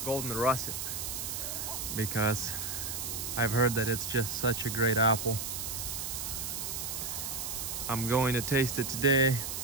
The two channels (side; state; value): right; noise; hiss, 4 dB below the sound